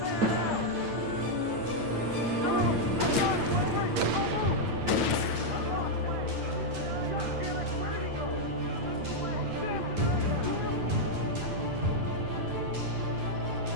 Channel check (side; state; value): left; late; 9.2 ms